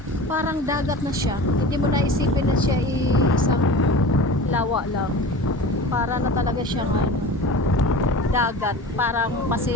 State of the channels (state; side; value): normal; both; correlation 0.35